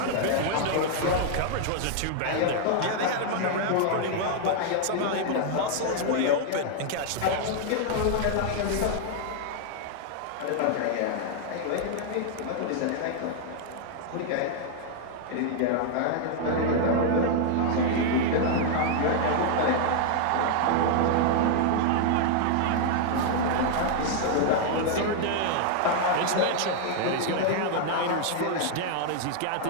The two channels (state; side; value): different; both; correlation 0.00